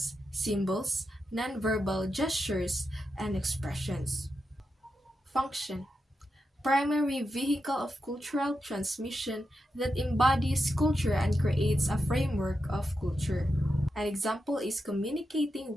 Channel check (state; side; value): normal; both; correlation 0.87